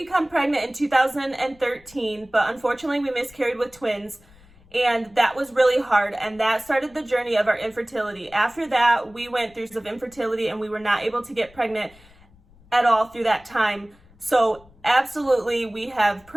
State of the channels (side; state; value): left; noise; rumble, 27 dB below the sound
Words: pregnant in 2013, but unfortunately, we miscarried with twins, and that was really hard, and that started the journey of our infertility. After that, we went through some infertility, and we were not able to get pregnant at all through that time. So absolutely, we have